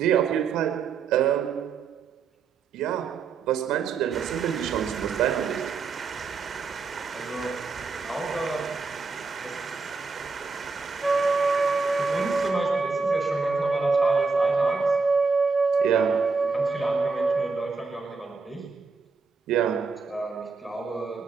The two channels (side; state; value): left; quieter; 4.7 dB